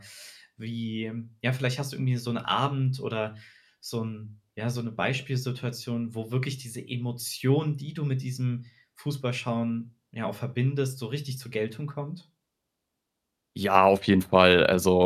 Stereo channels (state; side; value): identical; both; correlation 1.00